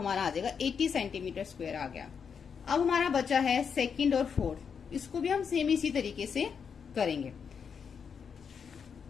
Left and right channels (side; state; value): right; quieter; 6.6 dB